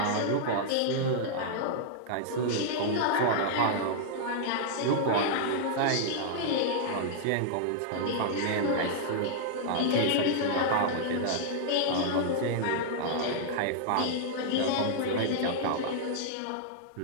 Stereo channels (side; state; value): both; different; correlation -0.01